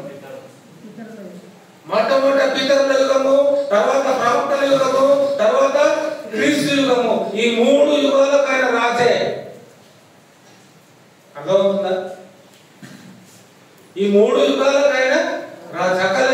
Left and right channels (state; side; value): identical; both; correlation 1.00